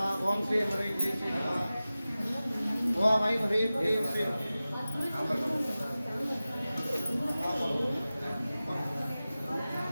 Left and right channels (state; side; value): inverted; both; correlation -0.96